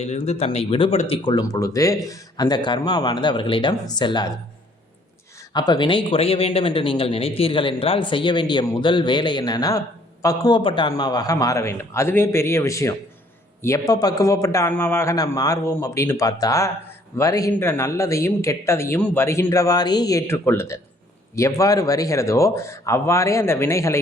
தன்னை விடுபடுத்தி கொள்ளும் பொழுது அந்த கர்மாவானது அவர்களிடம் செல்லாது. அப்போ வினை குறைய வேண்டும் என்று நீங்கள் நினைத்தீர்கள் என்றால் செய்ய வேண்டிய முதல் வேலை என்னன்னா, பக்குவப்பட்ட ஆன்மாவாக மாற வேண்டும். அதுவே பெரிய விஷயம். எப்போ பக்குவப்பட்ட ஆன்மாவாக நாம் மாறுவோம் அப்படின்னு பார்த்தா, வருகின்ற நல்லதையும் கெட்டதையும் வருகின்றவாறே ஏற்றுக்கொள்ளுதல். எவ்வாறு வருகிறதோ அவ்வாறே அந்த வினைகளை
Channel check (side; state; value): both; normal; correlation 0.61